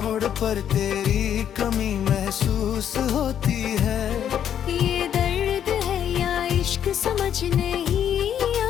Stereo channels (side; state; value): right; quieter; 9.5 dB